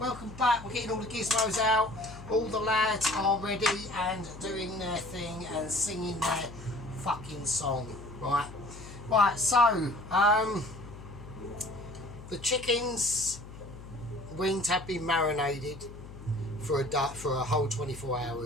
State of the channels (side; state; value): left; noise; hum, 15 dB below the sound